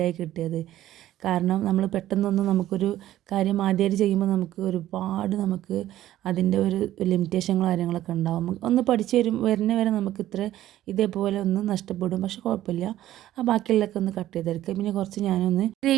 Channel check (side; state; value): left; quieter; 13.6 dB